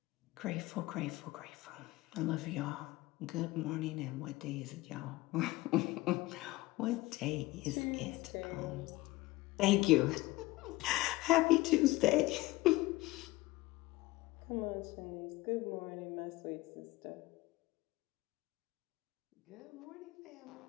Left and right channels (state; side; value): quieter; right; 19.3 dB